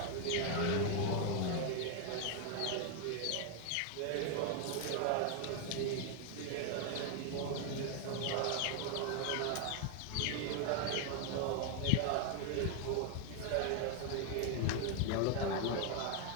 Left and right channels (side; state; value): both; different; correlation 0.01